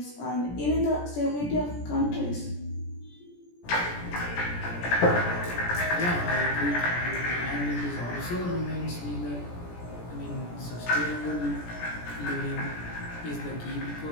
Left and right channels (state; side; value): late; right; 17 ms